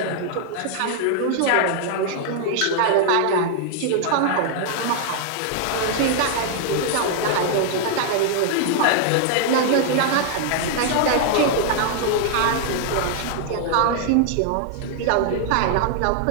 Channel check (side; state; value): both; different; correlation -0.01